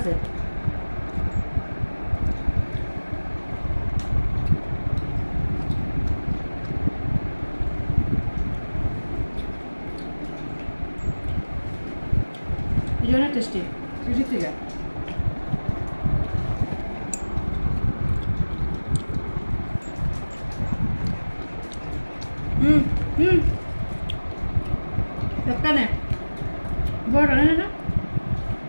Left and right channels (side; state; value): both; inverted; correlation -1.00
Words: অনেক টেস্টি ঠিক ঠিক একটা নে বড় নে না